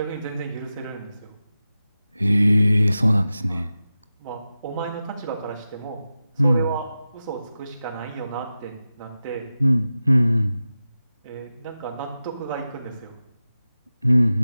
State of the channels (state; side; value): inverted; both; correlation -0.93